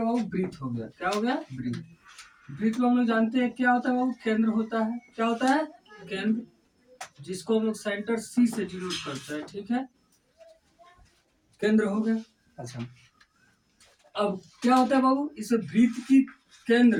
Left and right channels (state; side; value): identical; both; correlation 1.00